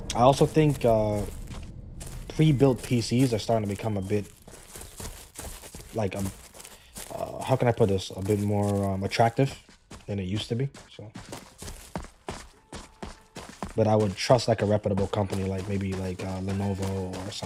I also think pre-built PCs are starting to become a bit like how can I put this? A bit more attractive than it used to be. So, but I would trust like a reputable company, like maybe like Lenovo or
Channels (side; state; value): both; identical; correlation 1.00